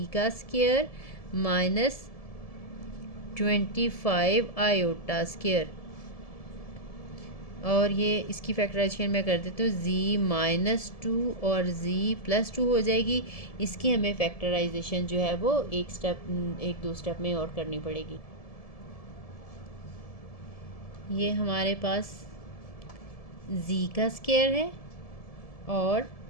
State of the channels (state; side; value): late; right; 1.7 ms